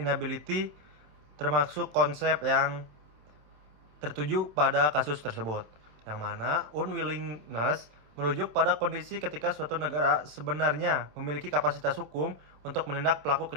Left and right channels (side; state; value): left; late; 27 ms